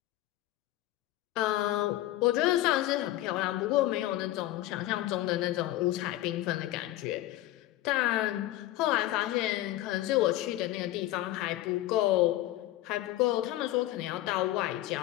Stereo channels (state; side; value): quieter; right; 15.5 dB